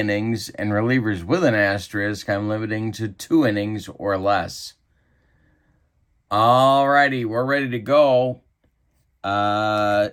And relievers with an asterisk, I'm limiting to 2 innings or less. Alrighty, we're ready to go.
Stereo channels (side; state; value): both; identical; correlation 1.00